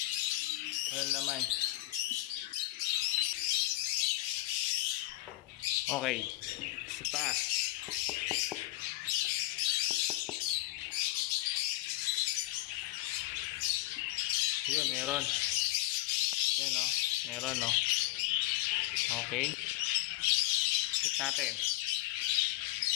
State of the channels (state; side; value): quieter; right; 17.1 dB